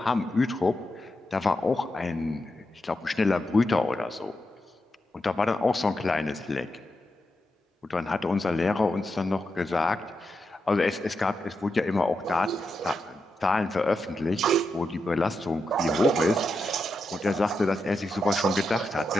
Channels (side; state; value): both; normal; correlation 0.86